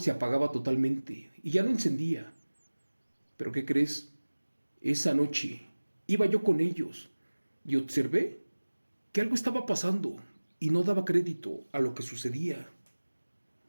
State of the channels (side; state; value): both; inverted; correlation -1.00